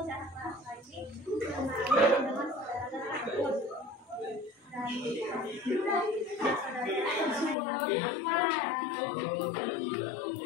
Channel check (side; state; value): right; drops out; at 7.6 s